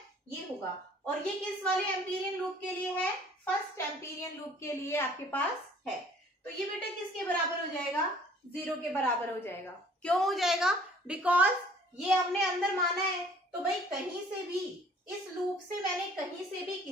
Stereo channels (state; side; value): normal; both; correlation 0.54